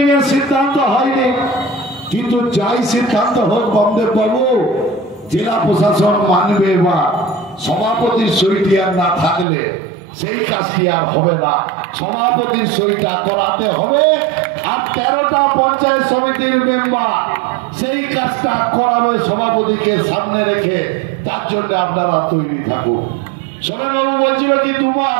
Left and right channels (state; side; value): drops out; left; at 9.5 s